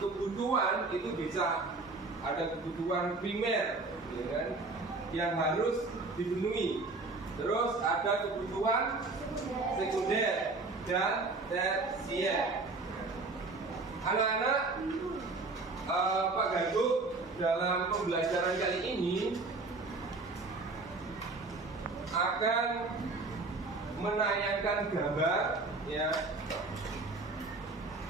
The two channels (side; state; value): left; quieter; 3.5 dB